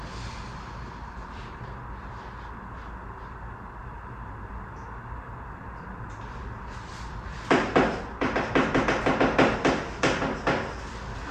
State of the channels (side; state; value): both; identical; correlation 1.00